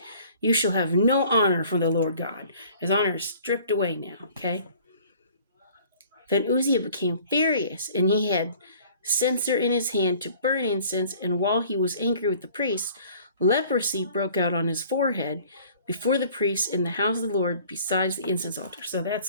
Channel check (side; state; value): both; inverted; correlation -0.52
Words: You shall have no honor from the Lord God." His honor is stripped away now, okay? Then Uzziah became furious, and he had censer in his hand to burn incense, and while he was angry with the priests, leprosy broke out on his forehead before the priests in the house of the Lord besides the incense altar. So